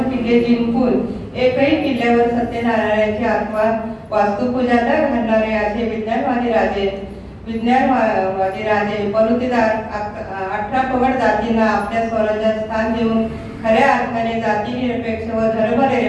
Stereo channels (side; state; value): both; identical; correlation 1.00